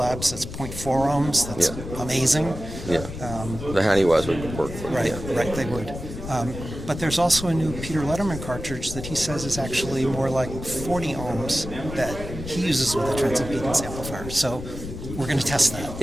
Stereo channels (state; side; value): noise; left; rumble, 9 dB below the sound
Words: that's 0.4 ohms. That's amazing. Yeah. The Honeywells would work. Right, right, they would. But there's also a new Peter Letterman cartridge that he says is actually more like 40 ohms that he uses with a transimpedance amplifier. So we're going to test that.